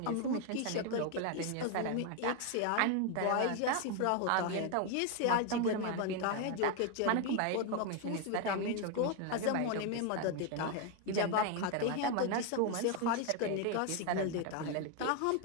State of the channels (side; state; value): both; different; correlation 0.01